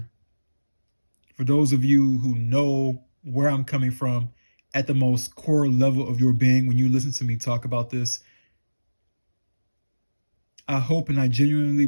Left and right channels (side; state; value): both; inverted; correlation -1.00